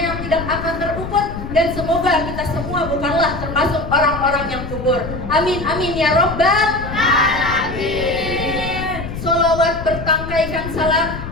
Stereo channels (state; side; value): noise; left; rumble, 8 dB below the sound